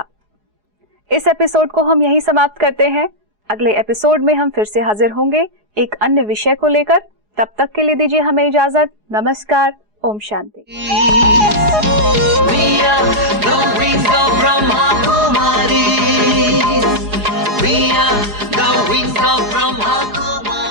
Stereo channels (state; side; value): late; left; 4.8 ms